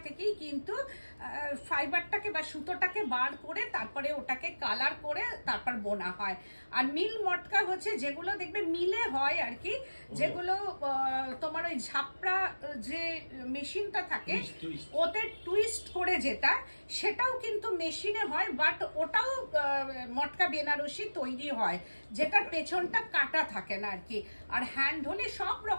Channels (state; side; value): inverted; both; correlation -1.00